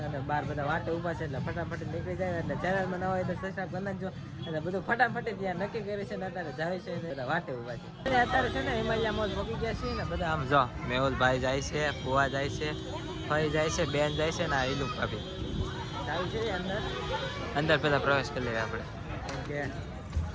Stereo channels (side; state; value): both; identical; correlation 1.00